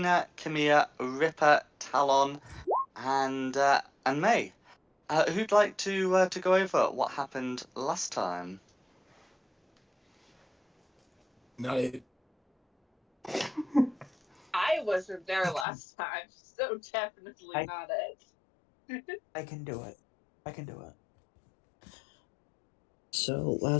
Kimia, Ripper, Talon, and May. Who'd like to go over what happened last time? Not it. I wasn't there last time, so definitely not it. I can do it. I can do it. So,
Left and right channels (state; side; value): drops out; right; at 15.7 s